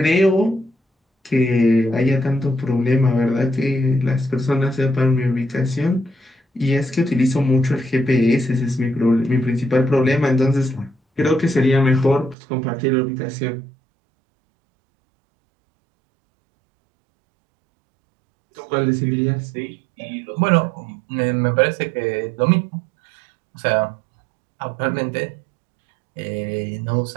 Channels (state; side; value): drops out; left; at 12.4 s